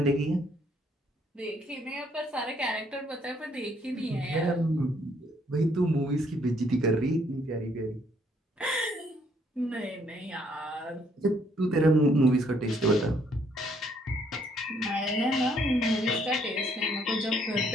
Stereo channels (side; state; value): both; normal; correlation 0.68